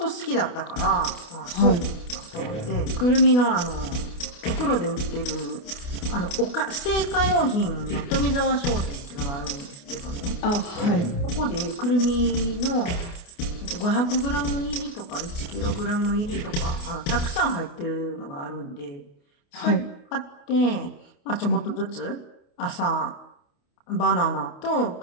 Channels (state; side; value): late; right; 29 ms